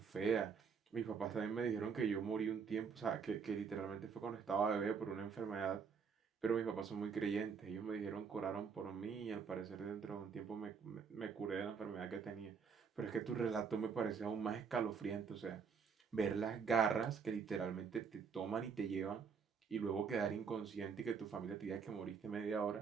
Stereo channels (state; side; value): quieter; left; 6.0 dB